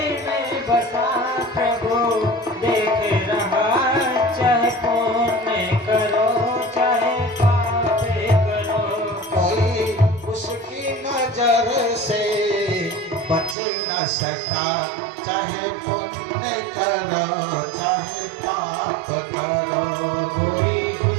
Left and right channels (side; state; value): left; drops out; at 13.6 s